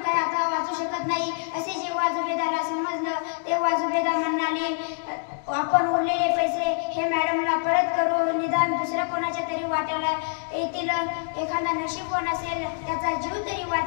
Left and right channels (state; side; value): silent; right; digital silence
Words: काही आता वाचू शकत नाही असे जेव्हा जुबेदाला समजलं, तेव्हा जुबेदा म्हणाली, आपण उरलेले पैसे हे मॅडमला परत करू, निदान दुसऱ्या कोणाच्या तरी वाट्याला येतील, एखादा नशीबवान असेल त्याचा जीव तरी